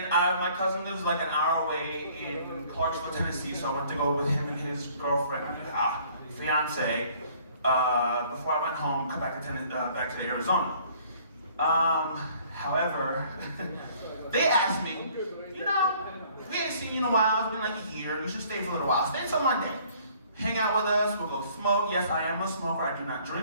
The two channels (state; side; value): inverted; both; correlation -0.57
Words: my cousin lives like an hour away in Clarksville, Tennessee, so I went to go with him and his girlfriend, fiance, before I went home, come back to Arizona. However, they asked me, you know, we ain't seen you in a while, it's been like a year, you should stay for a little while. Stay until Monday. Hang out with us, we'll go smoke. Yes, I am a smoker, I do not